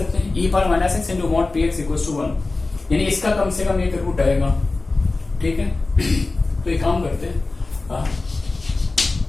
हैं e पर minus x into mod px equals to 1, यानी इसका कम से कम एक रूट आएगा. ठीक है, तो एक काम करते हैं,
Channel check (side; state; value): right; quieter; 3.4 dB